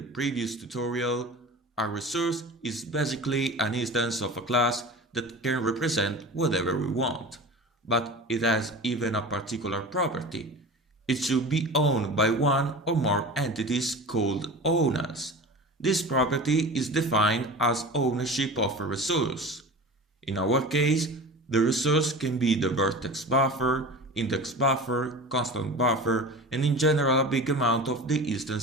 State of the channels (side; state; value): both; normal; correlation 0.34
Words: tutorial, a resource is basically an instance of a class that can represent whatever we want, but it has even a particular property. It should be owned by one or more entities called owners. This property is defined as ownership of a resource. In our case, the resource can be the vertex buffer, index buffer, constant buffer, and in general a big amount of the